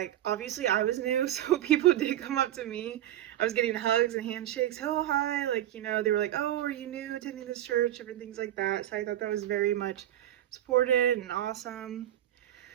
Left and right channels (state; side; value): quieter; left; 12.6 dB